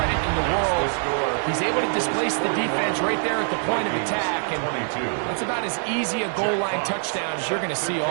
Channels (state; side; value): silent; left; 60 dB below the other